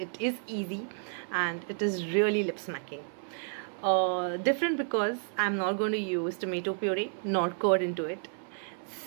is easy and it is really lip smacking. Different because I'm not going to use tomato puree nor curd into it.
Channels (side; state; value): left; silent; 57 dB below the other